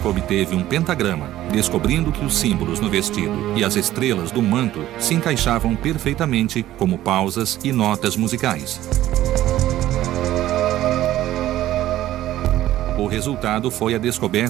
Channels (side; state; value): left; quieter; 14.0 dB